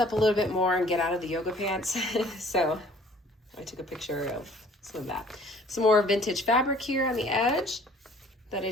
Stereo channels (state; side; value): normal; both; correlation 0.54